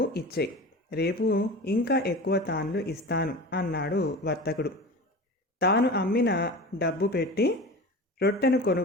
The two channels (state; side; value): normal; both; correlation 0.33